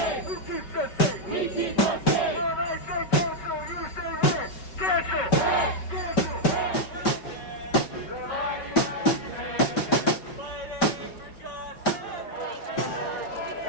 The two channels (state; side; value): late; right; 5.2 ms